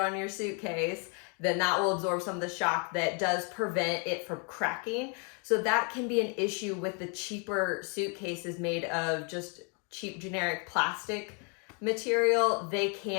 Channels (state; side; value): quieter; right; 37.3 dB